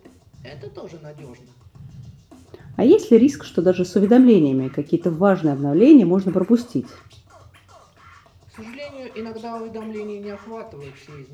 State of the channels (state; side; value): identical; both; correlation 1.00